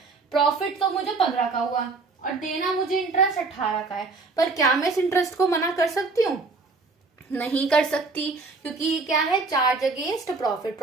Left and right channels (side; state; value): left; quieter; 3.9 dB